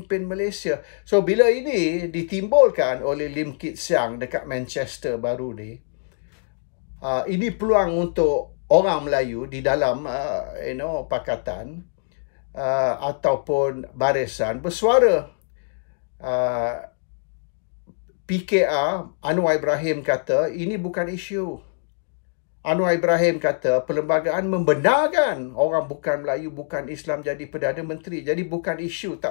Malaysia. So, bila ini ditimbulkan oleh Lim Kit Siang dekat Manchester baru ni, ini peluang untuk orang Melayu di dalam pakatan ataupun barisan bersuara. PKR Anwar Ibrahim kata ini bukan isu. Anwar Ibrahim kata perlembagaan membenarkan orang bukan Melayu, bukan Islam jadi Perdana Menteri. Jadi bukan isu,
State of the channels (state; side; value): silent; right; digital silence